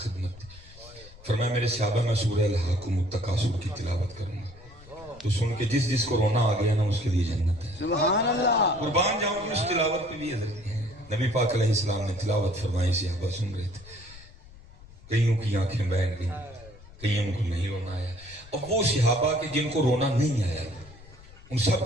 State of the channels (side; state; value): left; noise; rumble, 21 dB below the sound